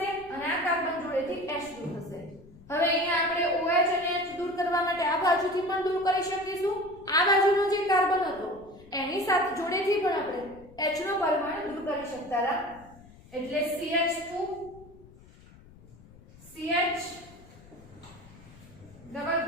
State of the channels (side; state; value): left; noise; rumble, 22 dB below the sound